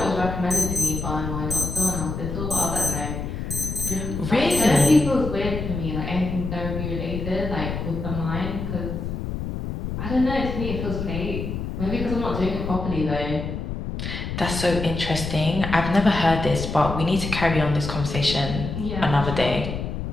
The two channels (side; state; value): left; noise; rumble, 5 dB below the sound